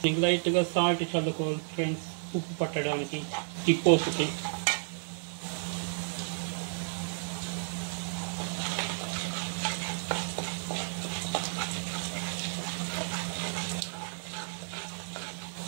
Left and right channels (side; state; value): left; silent; 56 dB below the other